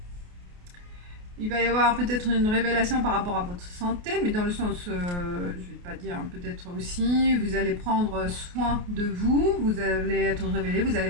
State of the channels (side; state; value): left; late; 28 ms